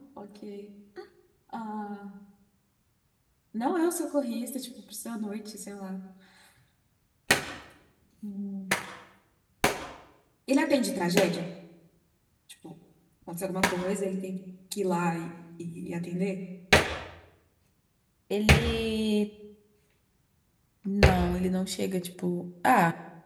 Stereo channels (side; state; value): both; identical; correlation 1.00